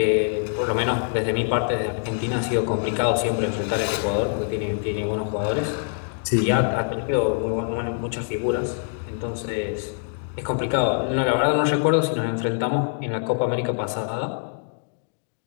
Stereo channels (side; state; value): right; silent; digital silence